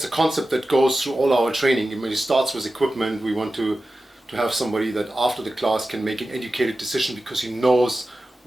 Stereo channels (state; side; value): normal; both; correlation 0.94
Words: a concept that goes through all our training. I mean, it starts with equipment. We want to have somebody that after the class can make an educated decision because he knows